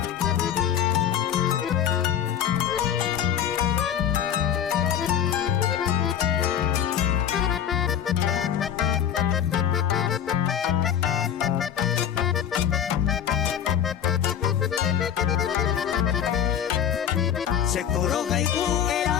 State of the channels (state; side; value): quieter; right; 9.5 dB